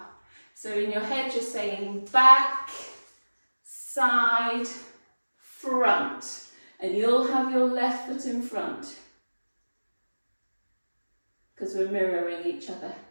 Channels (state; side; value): inverted; both; correlation -1.00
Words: So in your head you're saying back, side, front. And you'll have your left foot in front, because we're mirroring each other.